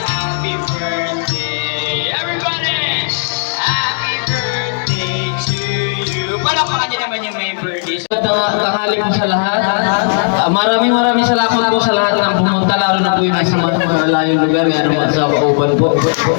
Happy birthday, everybody! Happy birthday to you. Palakpakan niyo naman yung may birthday. Tanghali po sa lahat. Maraming salamat po sa lahat ng pumunta, lalo na po yung nasa mga malayong lugar, kaya naman sa Kauban po.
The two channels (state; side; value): silent; right; digital silence